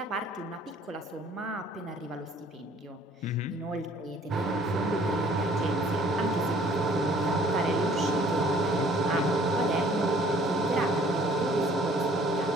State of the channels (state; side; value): normal; both; correlation 0.56